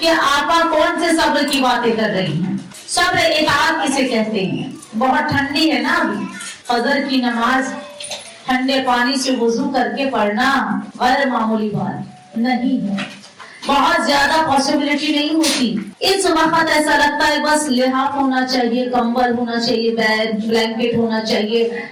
آپ کون سے صبر کی باتیں کر رہی ہیں. صبر اطاعت کسے کہتے ہیں؟ بہت ٹھنڈی ہے نا ابھی، فجر کی نماز ٹھنڈے پانی سے وضو کر کے پڑھنا غیر معمولی بات نہیں ہے، بہت زیادہ پاسبلٹی نہیں ہوتی. اس وقت ایسا لگتا ہے بس لحاف ہونا چاہیے، کمبل ہونا چاہیے، بلینکٹ ہونا چاہیے،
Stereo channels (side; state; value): both; identical; correlation 1.00